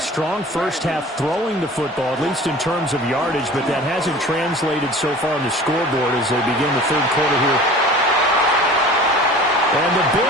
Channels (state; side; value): normal; both; correlation 0.42